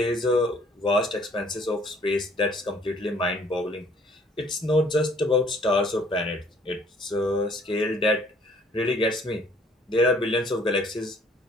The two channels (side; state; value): both; normal; correlation 0.59